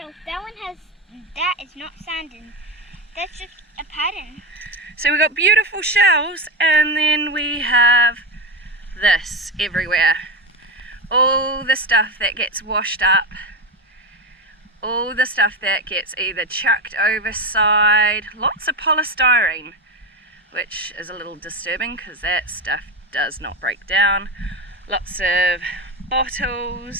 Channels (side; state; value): both; normal; correlation 0.16